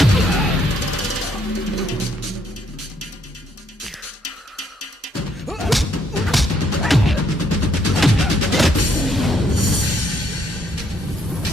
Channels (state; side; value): normal; both; correlation 0.70